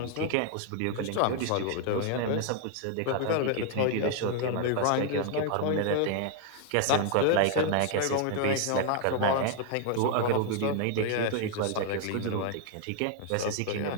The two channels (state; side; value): different; both; correlation 0.00